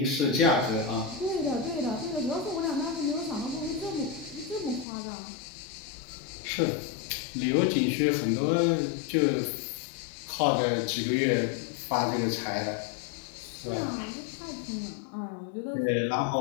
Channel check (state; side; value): drops out; right; at 4.9 s